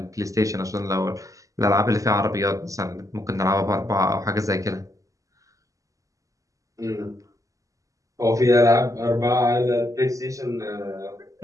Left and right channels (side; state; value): left; late; 0.16 ms